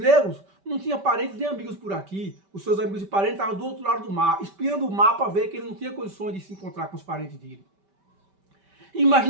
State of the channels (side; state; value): left; late; 5.1 ms